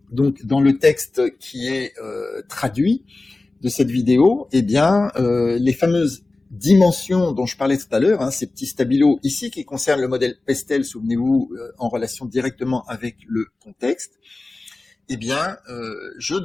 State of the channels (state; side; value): quieter; right; 3.2 dB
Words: donc dans le texte qui est traduit de cette vidéo, eh bien, les fameuses dimensions dont je parlais tout à l'heure, ces petits stabilos ici qui concernent le modèle Pestel, souvenez-vous, en relation directement avec le contexte, eh bien, je